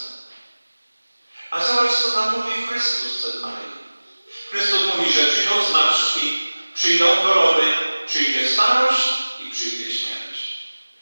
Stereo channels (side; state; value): both; inverted; correlation -1.00